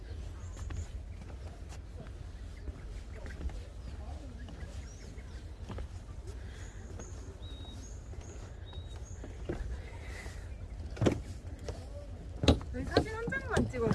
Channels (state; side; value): identical; both; correlation 1.00